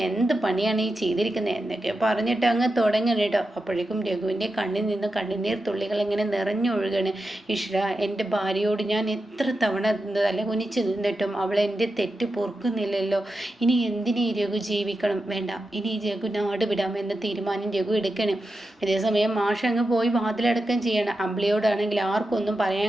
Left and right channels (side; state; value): both; normal; correlation 0.90